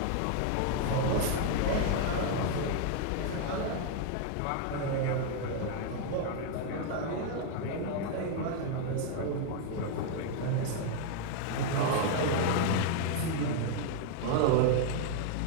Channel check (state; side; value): different; both; correlation 0.00